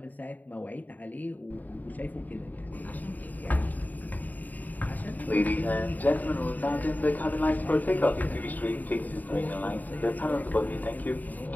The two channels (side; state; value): right; late; 0.082 ms